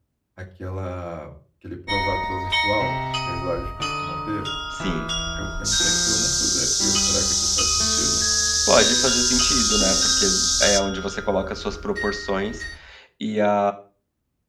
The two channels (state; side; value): identical; both; correlation 1.00